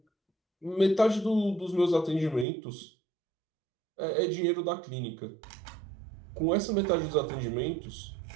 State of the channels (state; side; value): drops out; left; at 2.5 s